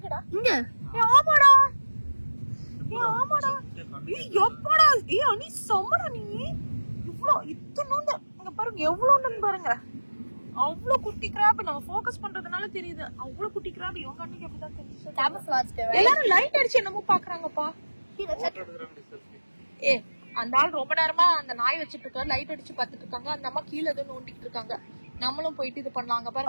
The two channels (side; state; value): both; inverted; correlation -1.00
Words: இங்க. ஆமாடா. எப்படா? அனி சமடா நீ. இவ்ளோ இத்தனோண்டு இங்க பாருங்க எவ்வளவுன்னு பாருங்க. அவ்வளவு குட்டி கிராப் நம்ம ஃபோக்கஸ் பண்றதுனால தெரியுது. அவ்வளவு குட்டி கிராப் இவங்க அன்னைக்கு எப்படிதான் தெரிஞ்சு. எல்லாரும் லைட் அடிச்சு என்னமோ பாக்குறாங்கப்பா. அந்த ஆள் ரொம்ப நேரமா அந்த நாய் வச்சிட்டு இருக்காரு. லைட் அடிச்சு பாத்துட்டு இருக்காங்க. அந்த அம்மா கீழே ஏதோ நோண்டிட்டு இருக்காங்க. நம்மளும் போயிட்டு இது பண்ணலாங்க